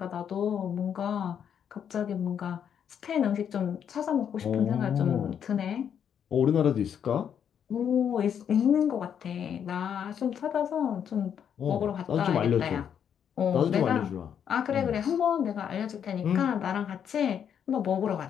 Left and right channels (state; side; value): quieter; right; 8.4 dB